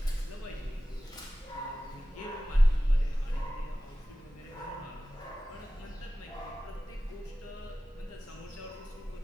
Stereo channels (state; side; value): normal; both; correlation 0.96